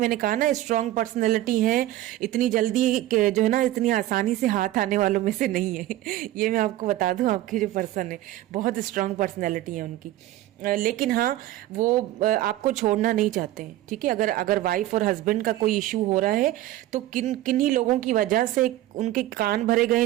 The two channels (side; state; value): left; quieter; 15.0 dB